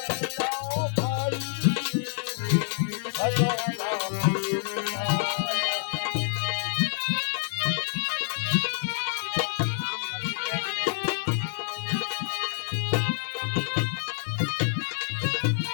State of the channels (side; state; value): right; silent; digital silence